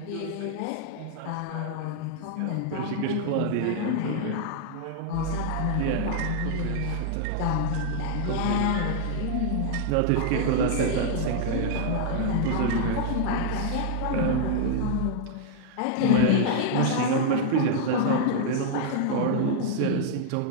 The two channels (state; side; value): different; both; correlation -0.01